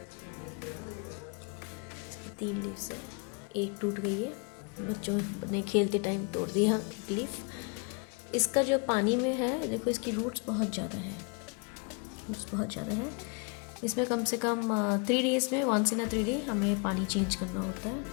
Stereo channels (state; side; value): quieter; right; 34.4 dB